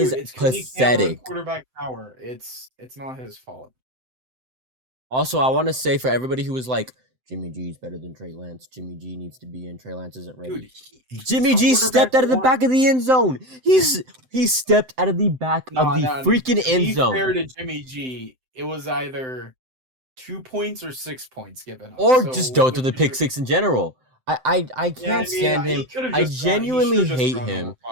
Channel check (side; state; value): left; late; 7.8 ms